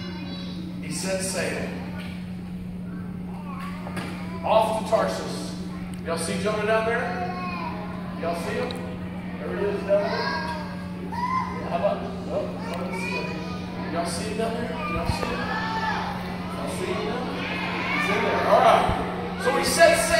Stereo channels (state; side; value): identical; both; correlation 1.00